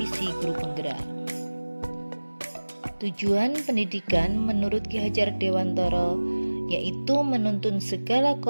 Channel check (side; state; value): both; inverted; correlation -1.00